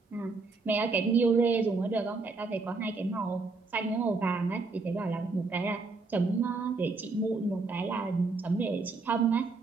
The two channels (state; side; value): quieter; left; 3.9 dB